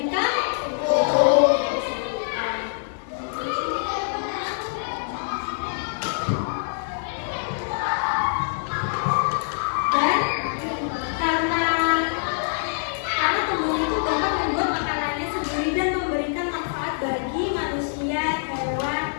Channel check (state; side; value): silent; right; digital silence